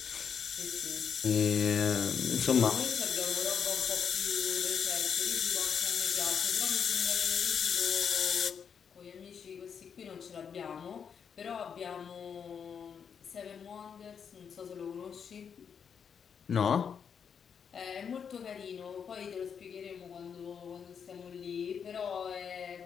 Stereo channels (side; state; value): right; quieter; 7.0 dB